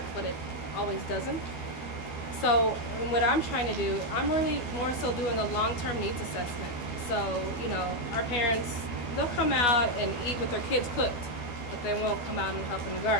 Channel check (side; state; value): right; late; 12 ms